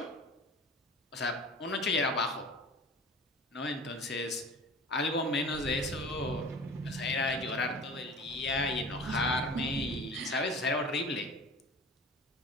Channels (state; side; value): normal; both; correlation 0.39